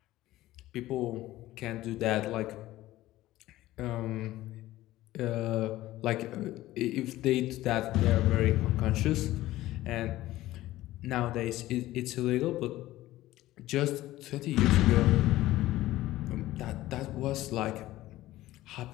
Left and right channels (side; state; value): right; quieter; 16.1 dB